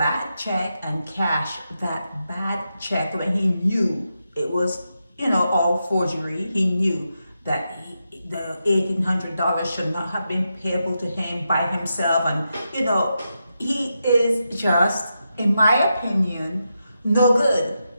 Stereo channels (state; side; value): inverted; both; correlation -0.86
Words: check and cash that bad check when he knew it was, all forgery. He knew that the $1,800 should not have been payable to him by himself. And, he is just, in my opinion, no good.